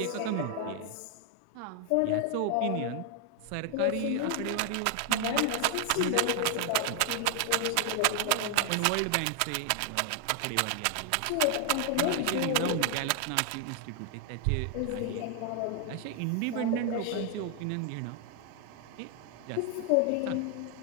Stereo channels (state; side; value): different; both; correlation 0.00